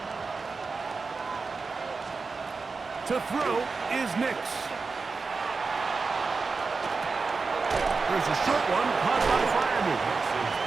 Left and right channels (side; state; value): left; quieter; 4.4 dB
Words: To throw is Nix. There's a short one caught by Fryerman.